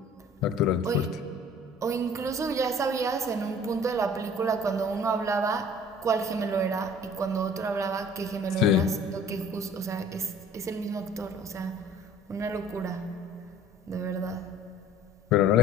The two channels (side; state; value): both; normal; correlation 0.50